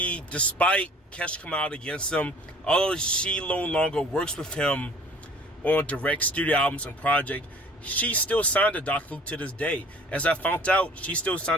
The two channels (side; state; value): both; normal; correlation 0.50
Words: Despite Kesha coming out against him, although she no longer works with him on direct studio albums and projects, she still signed to Dr. Luke to this day. As I found out, she still